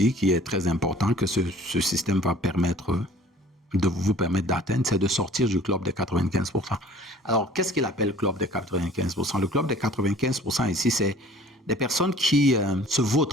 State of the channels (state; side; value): normal; both; correlation 0.50